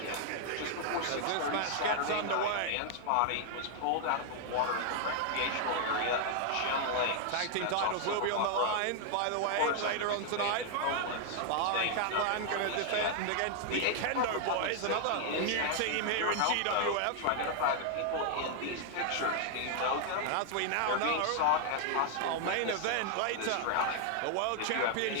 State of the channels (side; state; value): both; different; correlation 0.00